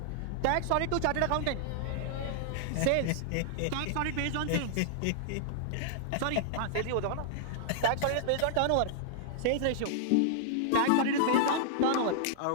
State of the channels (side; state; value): both; different; correlation -0.01